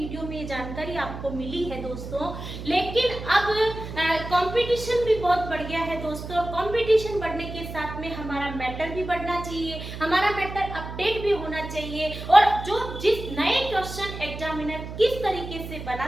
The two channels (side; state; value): right; noise; hum, 9 dB below the sound